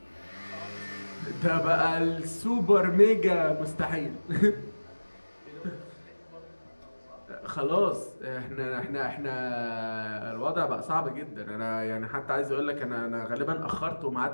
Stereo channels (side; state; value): both; inverted; correlation -1.00